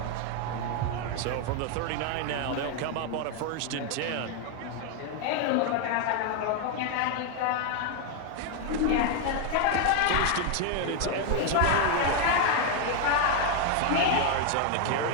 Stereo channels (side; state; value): both; different; correlation 0.01